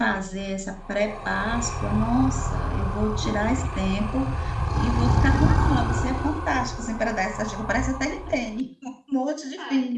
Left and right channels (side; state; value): both; identical; correlation 1.00